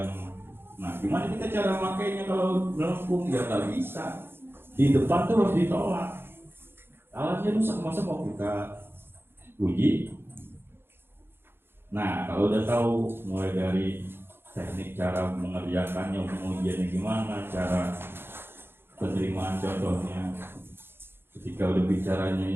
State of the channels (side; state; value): left; late; 0.11 ms